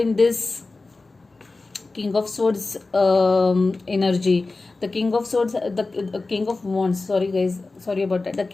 this King of Swords energy. The King of Swords, the King of Wands, sorry guys, sorry about that. The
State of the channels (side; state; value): right; quieter; 3.5 dB